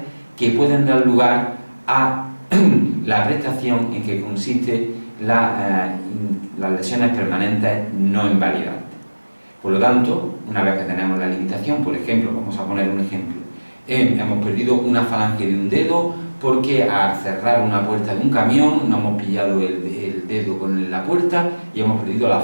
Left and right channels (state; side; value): inverted; both; correlation -1.00